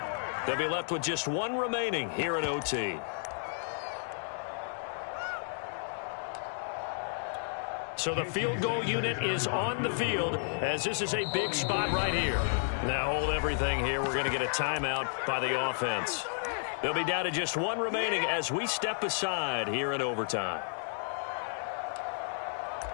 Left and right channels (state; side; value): silent; right; digital silence